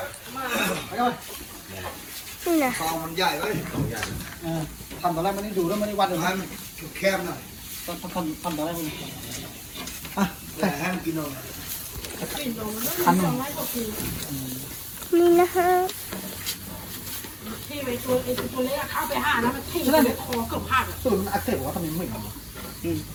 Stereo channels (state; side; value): identical; both; correlation 1.00